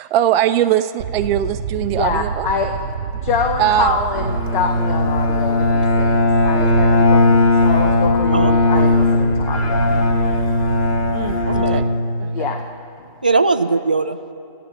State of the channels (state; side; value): inverted; both; correlation -0.46